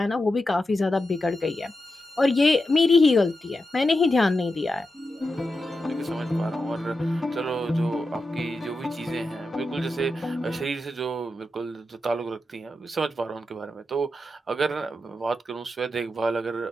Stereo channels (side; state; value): both; normal; correlation 0.89